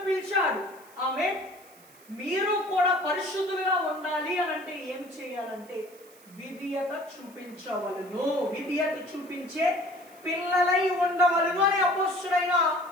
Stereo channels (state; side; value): noise; right; hiss, 25 dB below the sound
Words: పిలిచాడు. ఆమేన్. మీరు కూడా పరిశుద్ధులుగా ఉండాలి అని అంటే ఏం చేయాలంటే విధేయత చూపించవలను, విధేయత చూపించే పిల్లలై ఉండవలను అని అపోస్తలుడైన